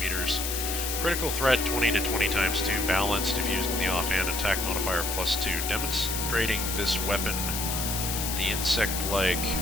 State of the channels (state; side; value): noise; left; hiss, 2 dB below the sound